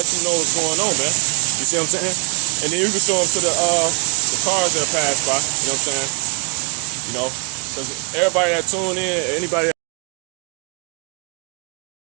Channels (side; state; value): left; quieter; 38.3 dB